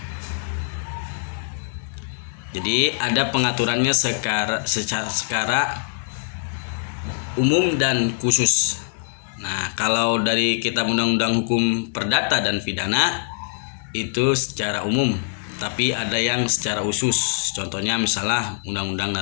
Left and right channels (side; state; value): right; silent; 56 dB below the other